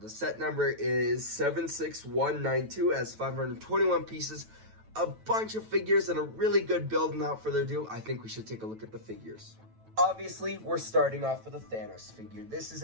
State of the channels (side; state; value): left; late; 9.1 ms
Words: set number is 76192, has 521 pieces, a bunch of figures, and a really good build. And without further ado, I think we should take a look at the figures. Obviously, we're starting off with a Thanos figure. This is